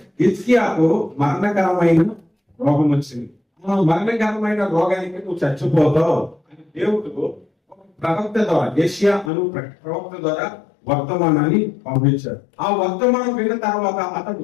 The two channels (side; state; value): right; drops out; at 9.3 s